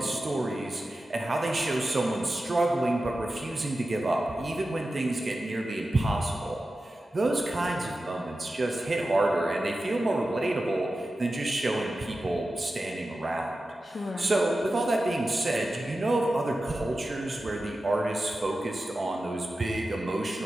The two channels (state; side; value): normal; both; correlation 0.93